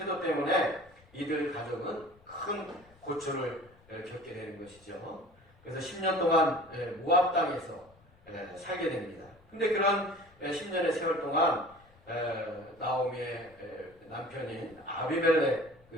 때문에 이들 가족은 큰 고초를 겪게 되는 것이죠. 그래서 10년 동안 모압 땅에서 살게 됩니다. 근데 그런 10년의 세월 동안 나오미의 남편인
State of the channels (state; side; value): noise; left; rumble, 28 dB below the sound